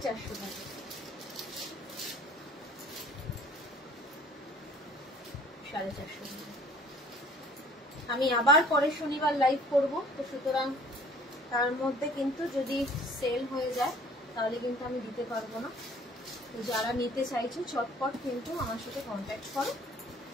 টাকা। আমি আবার পরের শনিবার লাইভ করব, তো সুতরাং তার মধ্যে কিন্তু যদি সেল হয়ে যায় তাহলে কিন্তু আমি দিতে পারবো না। তো যারা নিতে চাইছো চটপট কিন্তু আমার সাথে কন্ট্যাক্ট করো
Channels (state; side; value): normal; both; correlation 0.54